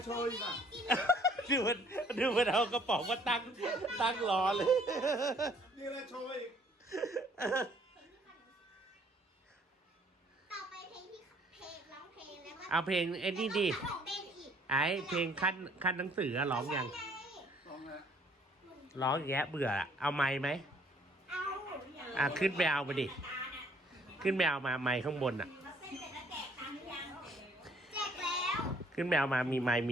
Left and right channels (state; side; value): normal; both; correlation 0.61